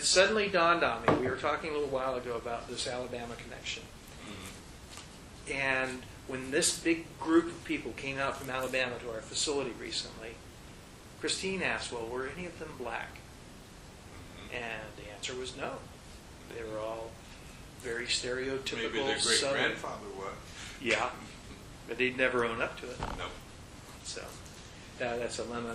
suddenly dawned on me, we were talking a little while ago about this Alabama connection. Mm-hmm. And when this big group of people came out from Alabama to our facility recently, Christine asked, well, were any of them black? Mm-hmm. And the answer was no. They were all very stereotypical. Maybe their Southern. great-grandfather was. Yeah, but they'd never own up to it. No. So that's a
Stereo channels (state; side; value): identical; both; correlation 1.00